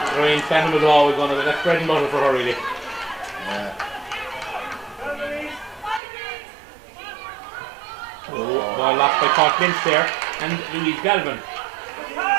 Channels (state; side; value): drops out; left; at 6.0 s